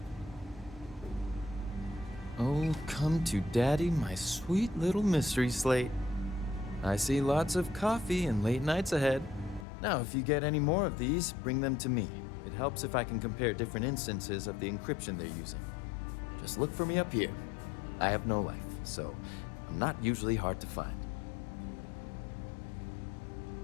Oh, come to daddy, my sweet little mystery slate. I see lots of coffee and late nights ahead. Now, if you get any more of these, bring them to me. It helps if I can compare different instances of the encryption they're using. Just look for me up here. I have no life, so I'm not usually hard to find.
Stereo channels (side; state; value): right; drops out; at 9.7 s